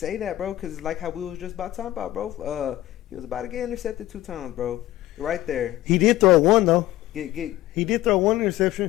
that, bro, because like how we was just about talking about, bro. He was about to get intercepted 2 times, bro. Right there. He did throw one though. He did throw one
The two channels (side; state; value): right; quieter; 15.3 dB